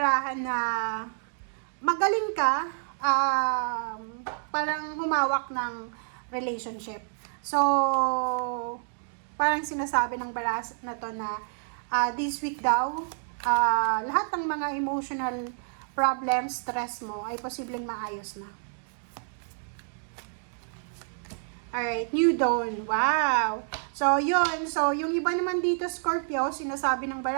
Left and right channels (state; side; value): silent; left; digital silence